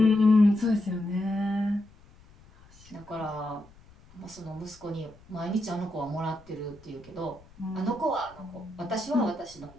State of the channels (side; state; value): left; noise; rumble, 25 dB below the sound